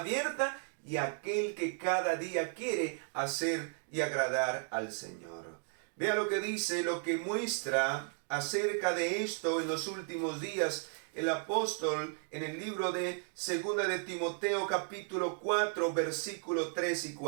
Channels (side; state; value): left; silent; 55 dB below the other